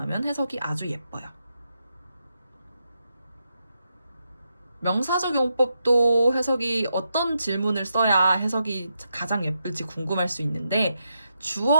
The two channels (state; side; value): inverted; both; correlation -0.83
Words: 해석이 아주 예뻐요. 명사적 용법도 해석이 어떤 질문을 써야 해석이 가장 예쁠지 궁금할 수 있는데